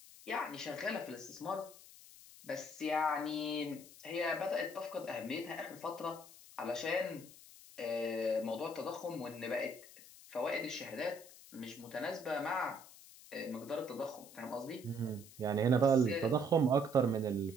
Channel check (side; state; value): left; noise; hiss, 19 dB below the sound